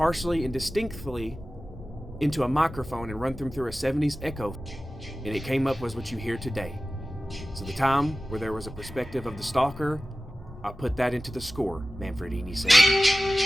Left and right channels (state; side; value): normal; both; correlation 0.95